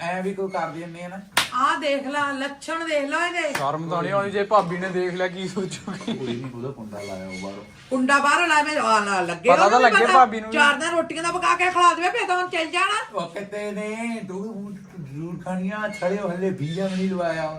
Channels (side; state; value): both; identical; correlation 1.00